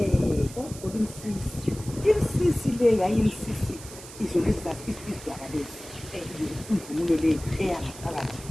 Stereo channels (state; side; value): noise; right; hiss, 15 dB below the sound